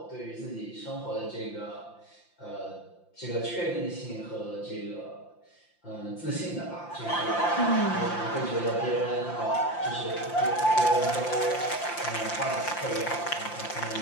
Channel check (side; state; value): right; late; 5.8 ms